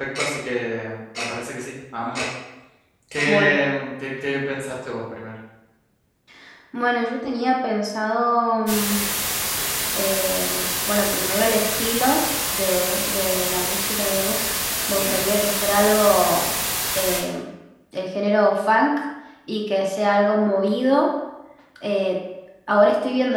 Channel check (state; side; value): identical; both; correlation 1.00